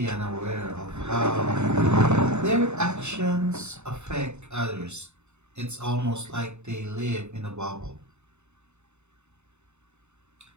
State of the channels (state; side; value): late; left; 0.82 ms